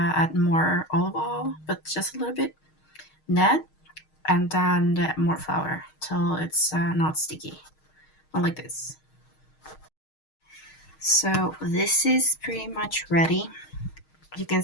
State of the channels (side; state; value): right; late; 6.4 ms